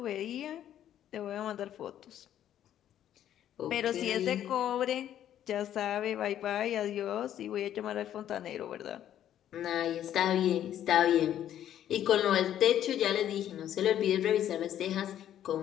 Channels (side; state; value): right; quieter; 11.0 dB